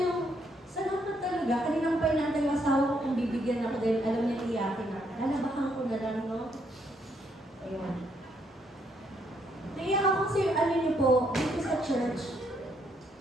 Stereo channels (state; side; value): normal; both; correlation 0.73